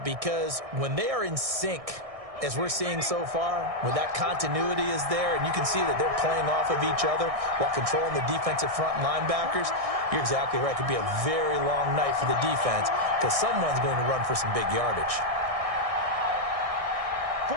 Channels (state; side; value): late; left; 1.6 ms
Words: because when they are in sync, as we're seeing so far, when that continuity is there and you can see that they're playing off of each other while controlling the defensive front and linebackers, you're exactly right. It could be a very long night for the defense because someone's going to run for some big yardage.